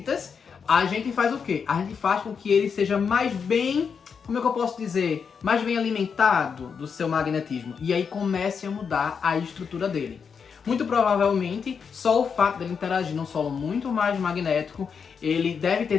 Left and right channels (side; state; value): right; quieter; 6.3 dB